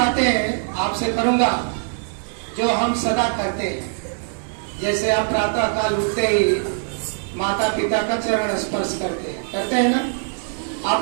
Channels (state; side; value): silent; left; 59 dB below the other